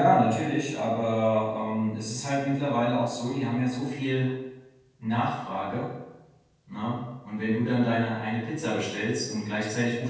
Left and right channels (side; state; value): both; identical; correlation 1.00